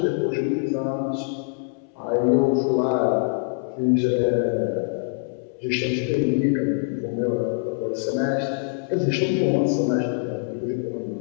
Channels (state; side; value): silent; right; 63 dB below the other